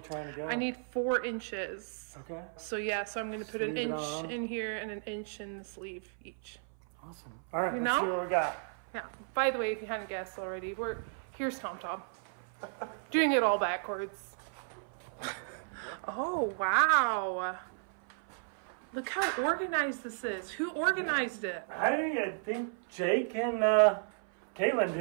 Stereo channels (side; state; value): left; silent; 55 dB below the other